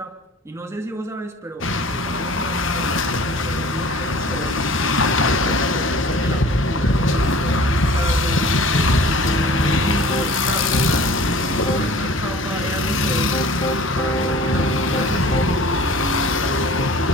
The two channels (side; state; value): both; normal; correlation 0.45